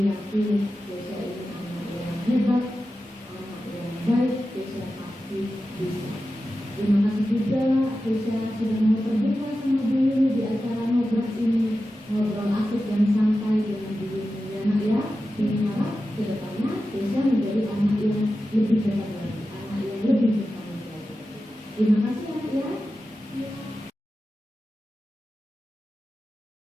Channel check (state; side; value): normal; both; correlation 0.92